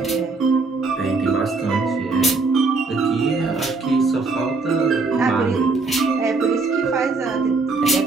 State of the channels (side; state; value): left; quieter; 3.9 dB